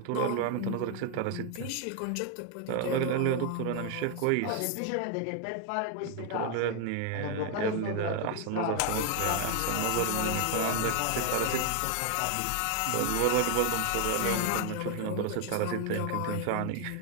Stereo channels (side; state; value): both; different; correlation 0.00